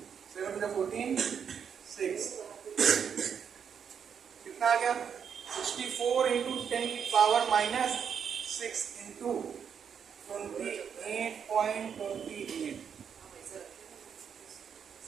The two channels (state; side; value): quieter; left; 7.4 dB